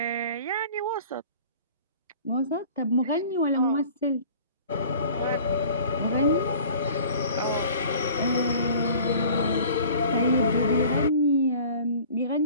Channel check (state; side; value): inverted; both; correlation -0.46